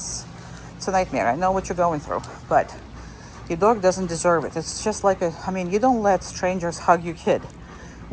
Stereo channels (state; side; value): identical; both; correlation 1.00